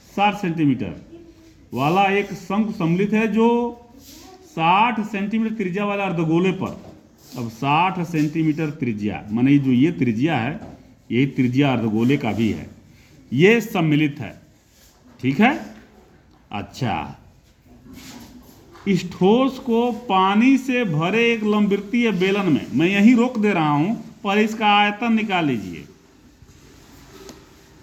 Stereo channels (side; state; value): both; identical; correlation 1.00